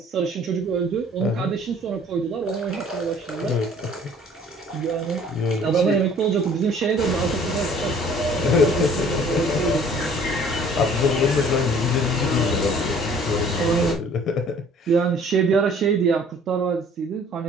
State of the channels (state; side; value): normal; both; correlation 0.53